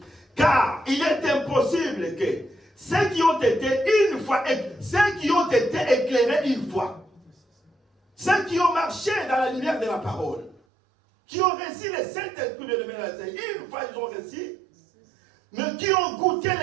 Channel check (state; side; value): drops out; left; at 10.6 s